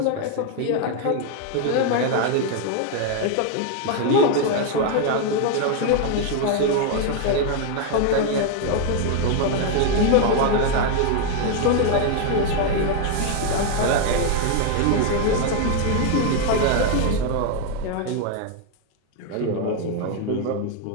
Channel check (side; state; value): both; different; correlation 0.00